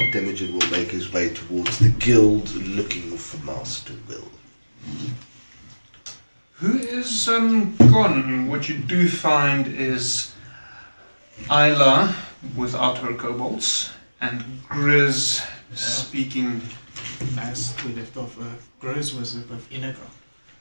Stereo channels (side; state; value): both; inverted; correlation -1.00